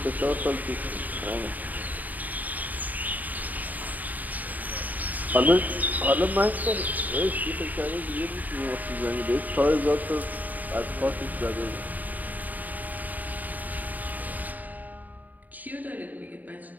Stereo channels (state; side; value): late; left; 0.081 ms